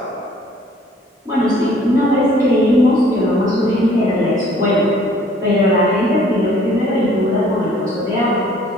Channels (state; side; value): normal; both; correlation 0.57